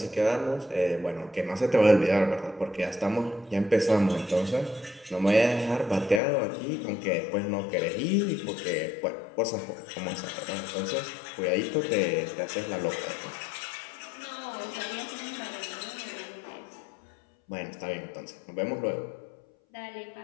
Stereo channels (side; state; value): right; drops out; at 6.2 s